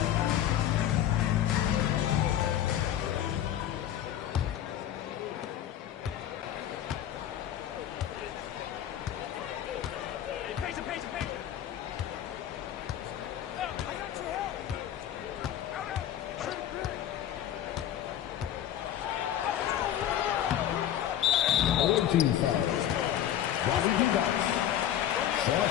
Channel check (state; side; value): quieter; right; 11.2 dB